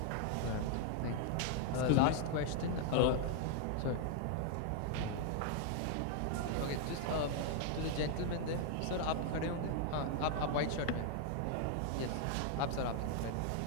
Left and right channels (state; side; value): different; both; correlation 0.00